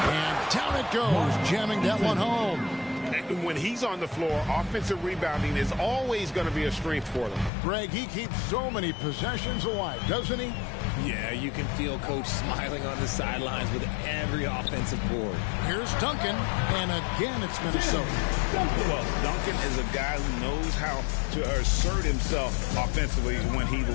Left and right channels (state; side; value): drops out; right; at 7.5 s